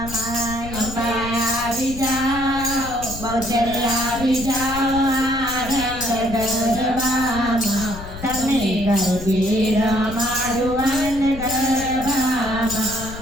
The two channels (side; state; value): left; noise; rumble, 12 dB below the sound